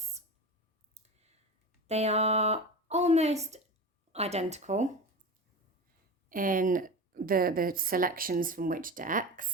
They are almost identical in the selections from which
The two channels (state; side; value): normal; both; correlation 0.28